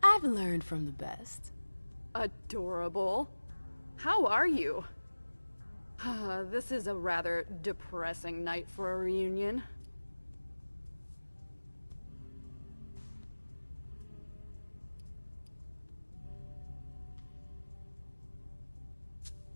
I've learned from the best. Adorable. How are you? This is a rather depressing night for a reunion.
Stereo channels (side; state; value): both; inverted; correlation -1.00